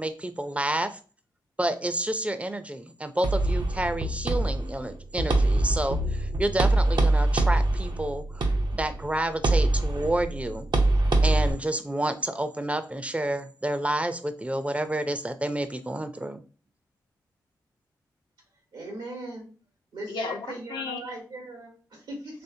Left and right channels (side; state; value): both; normal; correlation 0.86